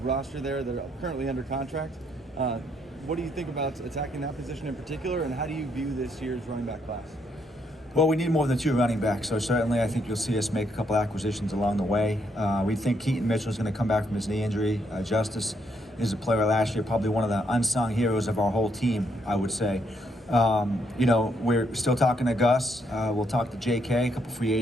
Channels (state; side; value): normal; both; correlation 0.74